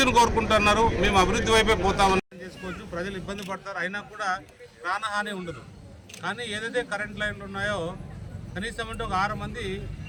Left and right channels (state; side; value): identical; both; correlation 1.00